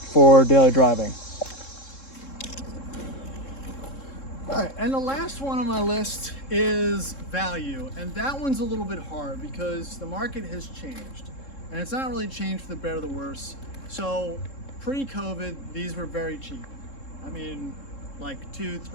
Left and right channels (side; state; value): right; late; 3.7 ms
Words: daily driving. All right, and the last one on my list is value, and that one's a little bit hard because the market has changed, and it's not really changed for the better or the worse. So pre-COVID, these were very cheap. I mean, like